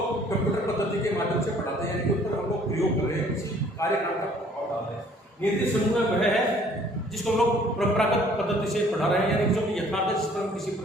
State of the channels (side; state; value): both; normal; correlation 0.57